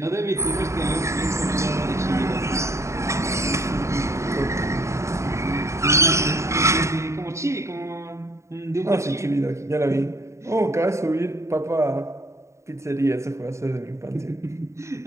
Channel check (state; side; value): late; left; 0.14 ms